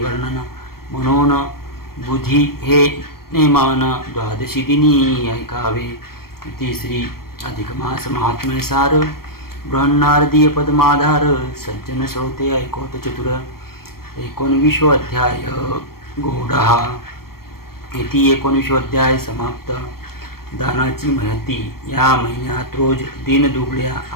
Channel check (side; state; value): right; late; 0.94 ms